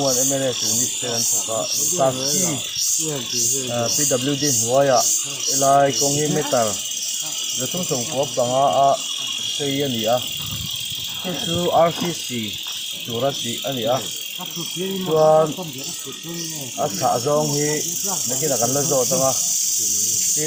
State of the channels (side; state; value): both; identical; correlation 1.00